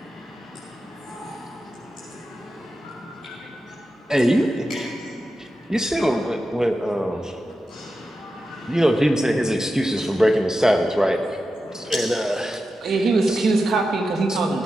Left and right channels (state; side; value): normal; both; correlation 0.91